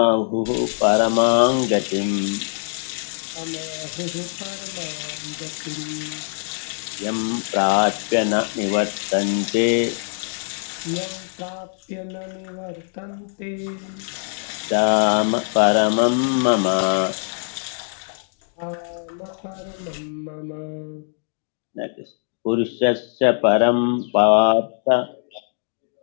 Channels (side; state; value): right; silent; digital silence